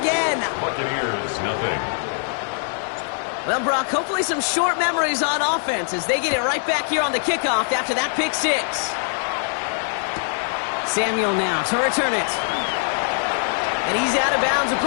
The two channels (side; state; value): right; silent; digital silence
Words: Buccaneers, nothing. Well, Brock, hopefully some short memories on offense as they get it right back here on the kickoff after that pick 6. Samuel now to return it. And he's out of bounds,